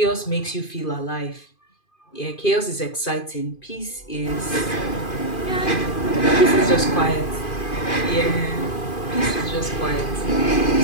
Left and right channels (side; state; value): right; late; 2.5 ms